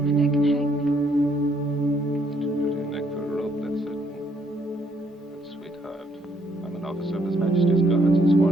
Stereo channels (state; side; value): normal; both; correlation 0.70